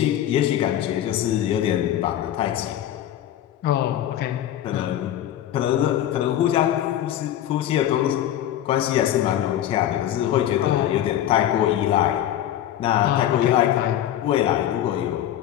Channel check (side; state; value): right; quieter; 11.7 dB